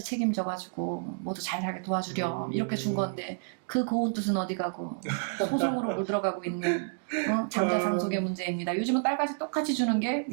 책임져가지고 모두 잘 살게 도와주렴 이렇게 준 건데 그 고운 뜻은 어디 가고 소송으로 물들어가고 있는 장자 상속의 문제입니다. 요즘은 딸까지 똑같이 주는 게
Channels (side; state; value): left; silent; digital silence